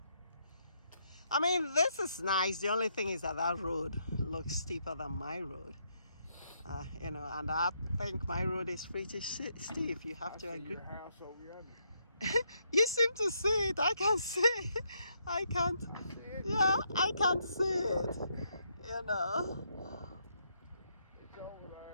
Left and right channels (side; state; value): both; inverted; correlation -0.76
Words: I mean, this is nice. The only thing is that that road looks steeper than my road. You know, and I think my road is pretty steep. You have I to see agree. your house over yonder. You seem to see it. I can see it. I can't. I see it. Yeah, I can't see it. You know. It's over